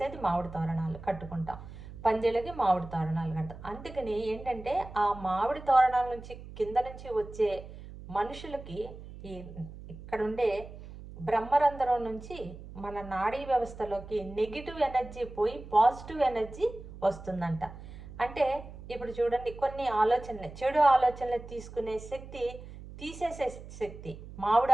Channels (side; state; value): right; noise; hum, 14 dB below the sound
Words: మామిడి తోరణాలు కట్టుకుంటాం. పందిళ్ళకి మామిడి తోరణాలు కడతాం. అందుకని ఏంటంటే, ఆ మామిడి తోరణాల నుంచి కింద నుంచి వచ్చే మనుషులకి ఇక్కడ ఉండే బ్రహ్మరంధ్రం నుంచి మన నాడీ వ్యవస్థలోకి నెగిటివ్ ఎనర్జీ పోయి పాజిటివ్ ఎనర్జీ వస్తుందంట. అంటే ఇప్పుడు చూడండి, కొన్ని ఆలోచనలు, చెడు ఆలోచనలు తీసుకునే శక్తి, తీసేసే శక్తి